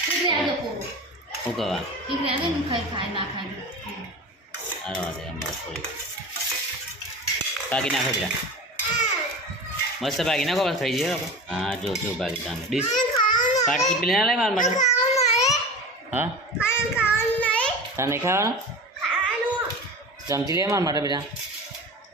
શું કહેવા સારો વાત અમારે થોડી બાકી નાખો પેલા મસ્ત બાકી નાખો બસ થઈ જાય. હા જો બાકી તમે ડીશ પાટકી પેલી ના લાય મારા માટે. હા તાર નહીં ખાવાનું? ચમચી લે મારા માટે બેટા.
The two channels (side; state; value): both; normal; correlation 0.32